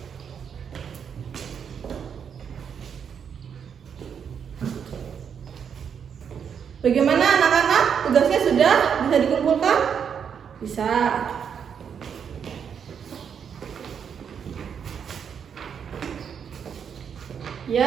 Bagaimana anak-anak? Tugasnya sudah bisa dikumpulkan? Bisa.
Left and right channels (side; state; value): left; quieter; 7.4 dB